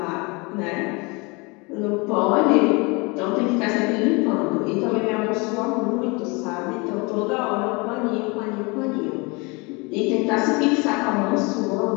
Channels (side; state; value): right; quieter; 28.0 dB